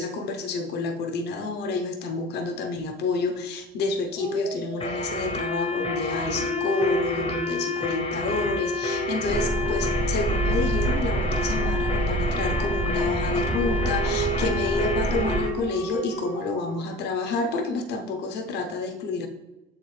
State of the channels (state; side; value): normal; both; correlation 0.39